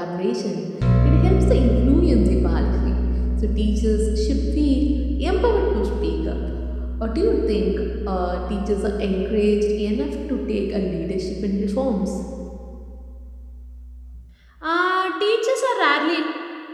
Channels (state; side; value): identical; both; correlation 1.00